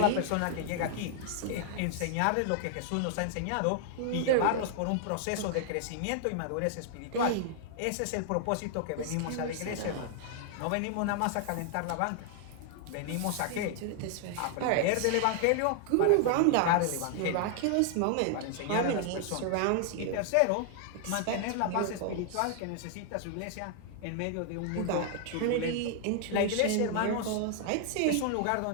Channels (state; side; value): different; both; correlation 0.00